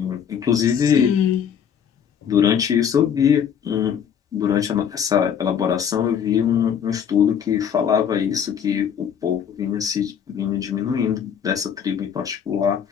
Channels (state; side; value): quieter; right; 8.1 dB